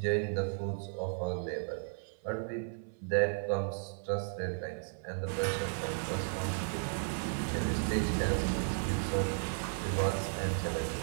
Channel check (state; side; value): silent; left; 55 dB below the other